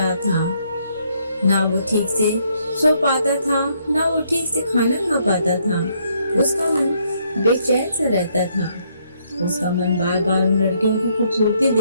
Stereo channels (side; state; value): both; inverted; correlation -0.71